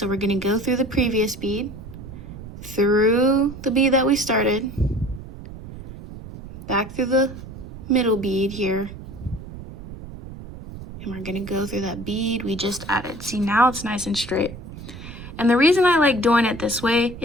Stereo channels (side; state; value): right; noise; rumble, 13 dB below the sound